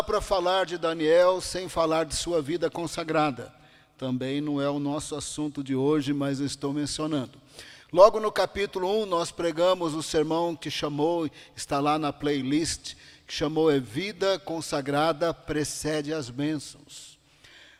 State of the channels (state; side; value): identical; both; correlation 1.00